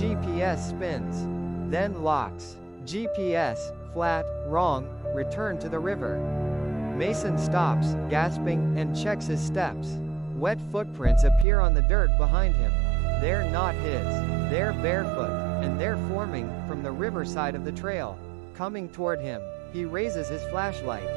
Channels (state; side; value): drops out; left; at 11.5 s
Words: spins. Then locks. GPS, flat, wrong, return to the river. Mason stops, gasping, and checks his steps. Wet footprints appear on the dirt behind him. They're not his. They're barefoot, and they're forming from the riverside of the trail. Coming toward him, he raises his